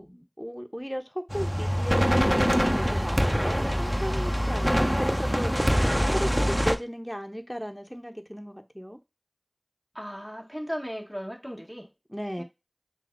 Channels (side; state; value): both; identical; correlation 1.00